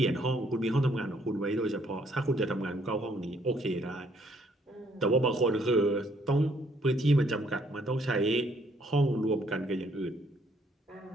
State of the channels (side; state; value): both; normal; correlation 0.66